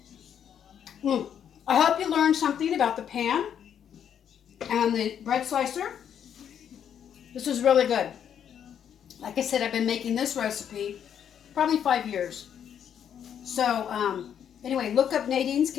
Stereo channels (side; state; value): right; quieter; 8.8 dB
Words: I hope you learned something about the pan and the bread slicer. This is really good. Like I said, I've been making this recipe probably 5 years. So anyway, look up Nadine's